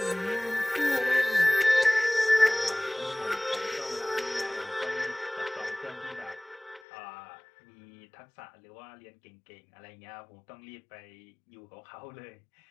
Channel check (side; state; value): right; drops out; at 6.8 s